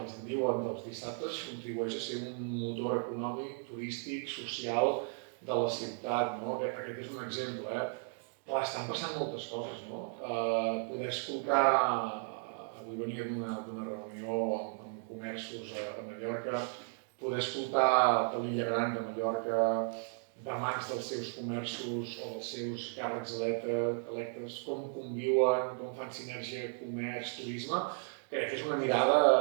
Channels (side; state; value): left; silent; 54 dB below the other